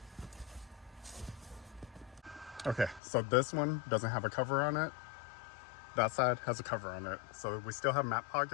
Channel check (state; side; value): drops out; right; at 3.0 s